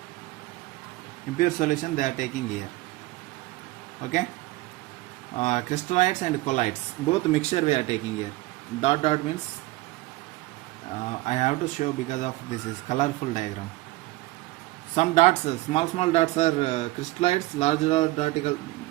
solution they are taking here. Okay, crystallites and colloids, both mixture we are taking here. Dot dot means I have to show because of this is colorful diagram. Some dots, small dots are crystallites, large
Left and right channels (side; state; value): left; quieter; 19.6 dB